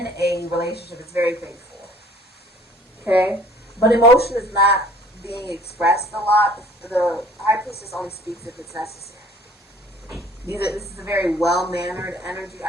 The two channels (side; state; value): both; normal; correlation 0.53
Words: a relationship, it's very faithful. Okay? But emotion is not being expressed a lot. The High Priestess only speaks if it's necessary. This is a very well-mannered energy.